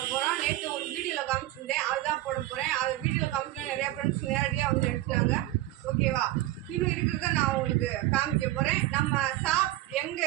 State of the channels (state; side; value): quieter; left; 15.9 dB